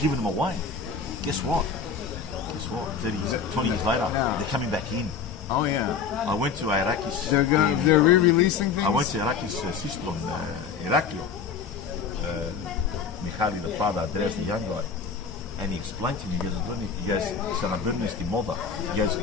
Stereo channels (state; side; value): quieter; right; 5.9 dB